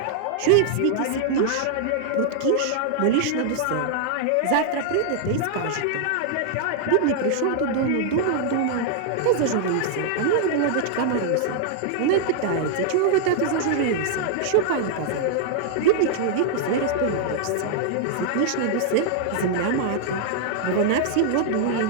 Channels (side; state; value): both; different; correlation -0.01